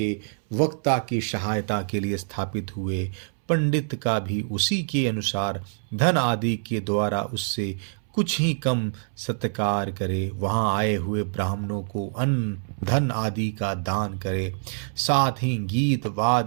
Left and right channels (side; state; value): left; silent; 61 dB below the other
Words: वक्ता की सहायता के लिए स्थापित हुए। पंडित का भी उसी के अनुसार धन आदि के द्वारा उससे कुछ ही कम सत्कार करे। वहां आए हुए ब्राह्मणों को अन्न, धन आदि का दान करे। साथ ही गीत,